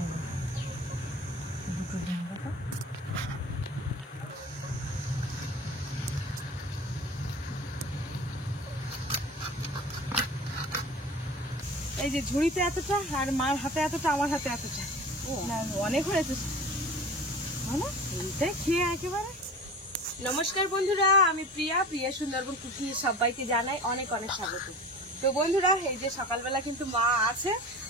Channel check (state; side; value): normal; both; correlation 0.38